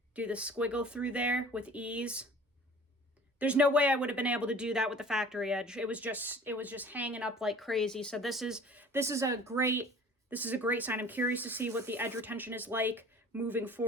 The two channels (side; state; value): both; normal; correlation 0.46